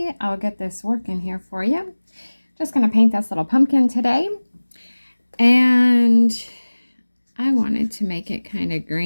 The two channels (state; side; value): inverted; both; correlation -1.00